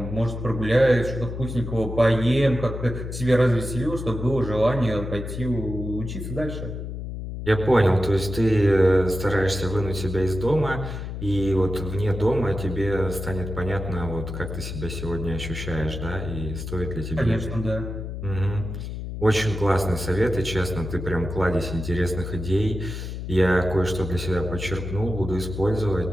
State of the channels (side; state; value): left; noise; hum, 7 dB below the sound